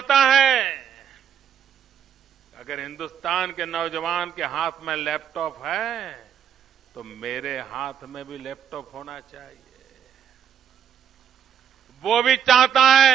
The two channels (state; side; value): quieter; left; 8.5 dB